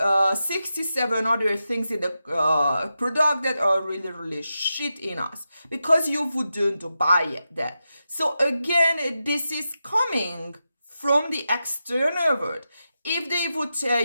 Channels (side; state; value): both; inverted; correlation -0.89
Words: 67 other things in the product that are really, really shit in us, because you wouldn't buy that. So again, this is coming from the external world. If they would tell